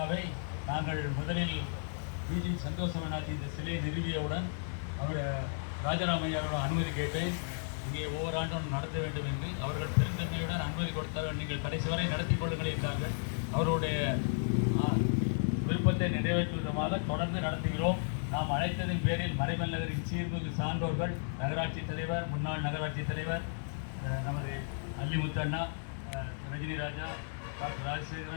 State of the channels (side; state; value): right; silent; digital silence